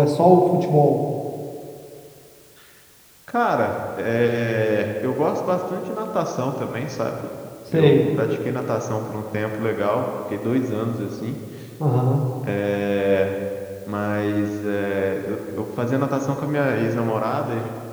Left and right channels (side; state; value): both; identical; correlation 1.00